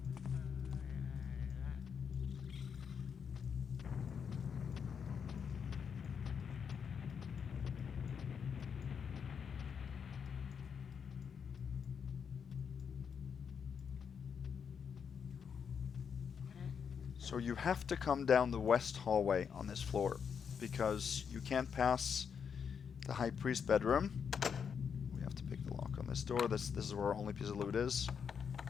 So you have to come down the west hallway on this floor, because you can't pass the High Priest bedroom. We have to pick the lock on this door. This is where our only piece of loot is.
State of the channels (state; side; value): quieter; right; 6.9 dB